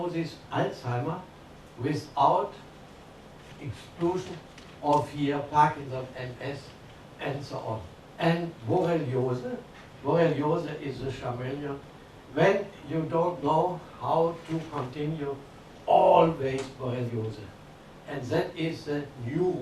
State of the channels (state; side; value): identical; both; correlation 1.00